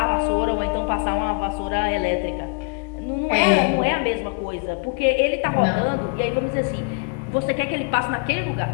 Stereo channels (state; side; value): quieter; right; 37.0 dB